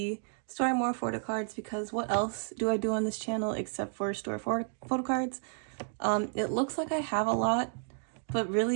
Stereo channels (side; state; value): left; silent; 57 dB below the other